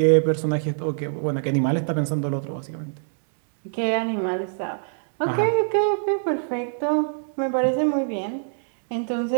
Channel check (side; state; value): left; silent; digital silence